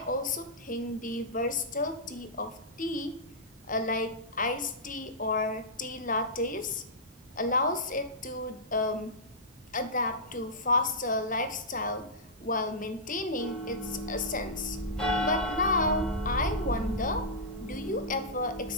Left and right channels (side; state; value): both; normal; correlation -0.12